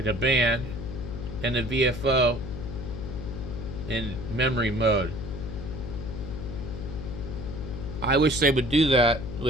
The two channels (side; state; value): left; noise; hum, 7 dB below the sound